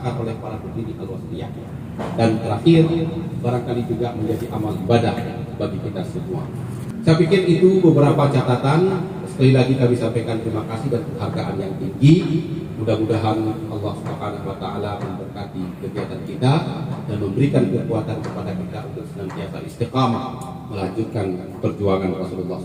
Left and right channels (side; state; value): both; identical; correlation 1.00